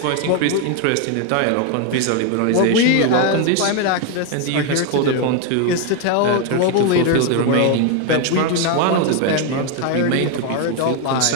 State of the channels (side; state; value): both; different; correlation 0.01